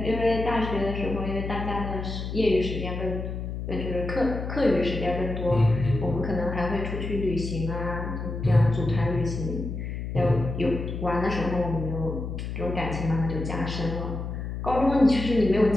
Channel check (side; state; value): left; noise; hum, 5 dB below the sound